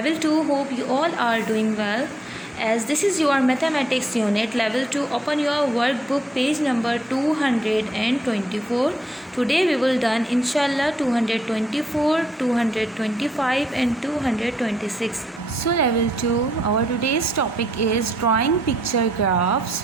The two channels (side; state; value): both; normal; correlation 0.74